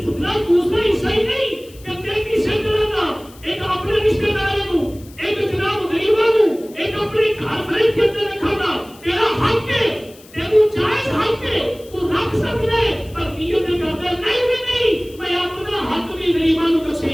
اتنا دوسرا حصہ ہی نہیں کہ تیری سے کرنا ایک اپنے رشتے داروں کو ایک جناب غریبوں کو ایک اپنے گھر فرید کے اندر رکھنا تیرا حق ہے تیرا جائز حق ہے تو رکھ سکتا ہے پر نیت کرتا نہیں بھی نہیں میں اپنا حق بھی غریبوں کو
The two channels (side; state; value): left; noise; hiss, 24 dB below the sound